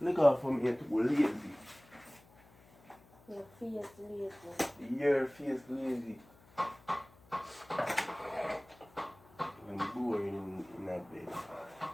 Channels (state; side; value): noise; left; hum, 26 dB below the sound